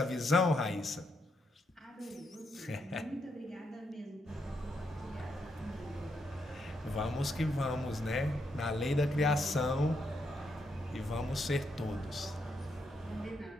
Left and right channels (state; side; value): normal; both; correlation 0.79